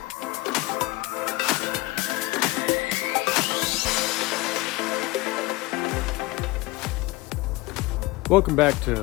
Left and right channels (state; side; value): quieter; right; 21.0 dB